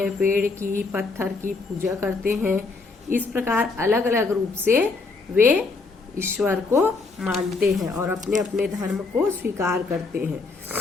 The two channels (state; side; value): quieter; right; 3.9 dB